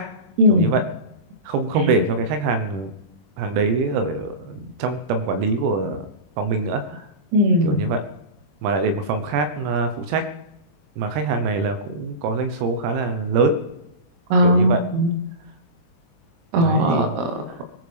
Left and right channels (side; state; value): left; late; 20 ms